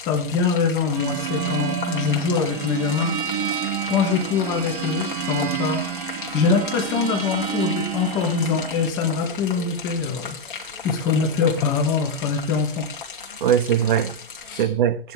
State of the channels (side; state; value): both; normal; correlation 0.04